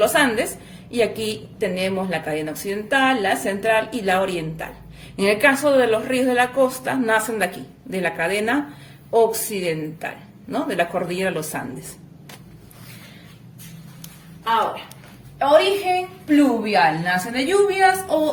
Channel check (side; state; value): both; identical; correlation 1.00